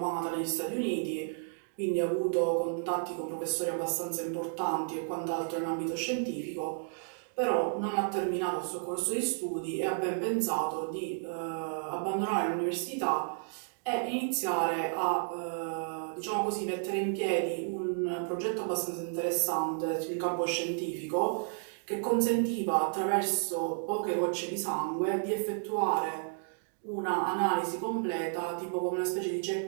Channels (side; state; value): left; silent; digital silence